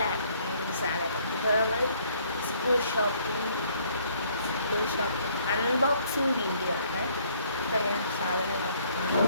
സ്വാഗതം. ഇപ്പോൾ നമ്മൾ സ്കൂൾ ഷോപ്പിംഗ് അൺബോക്സിങ് വീഡിയോ ആണ്. ഇപ്പോൾ ഞാൻ സാധനങ്ങളൊക്കെ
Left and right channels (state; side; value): inverted; both; correlation -0.63